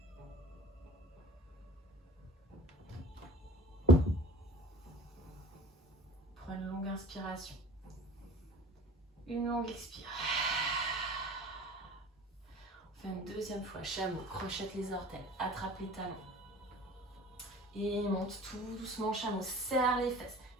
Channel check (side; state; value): both; normal; correlation 0.43